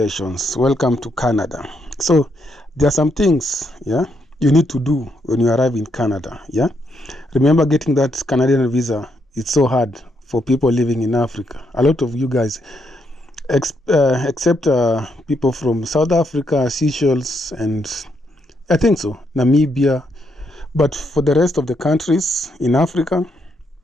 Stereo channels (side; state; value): both; normal; correlation 0.77